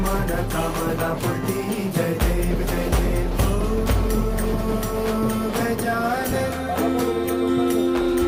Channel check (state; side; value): identical; both; correlation 1.00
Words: मन कामना पूर्ती. जय देव जय देव ओ गजानन